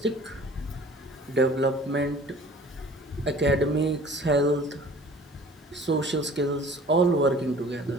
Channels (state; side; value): normal; both; correlation 0.48